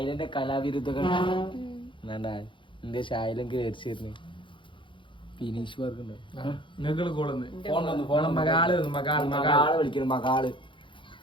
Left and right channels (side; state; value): right; late; 0.24 ms